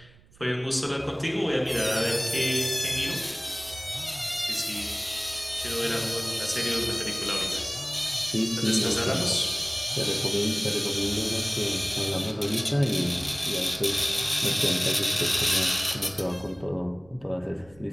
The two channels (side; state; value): right; noise; rumble, 25 dB below the sound